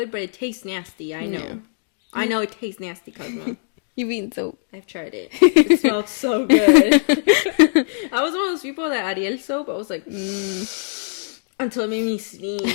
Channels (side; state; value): right; silent; digital silence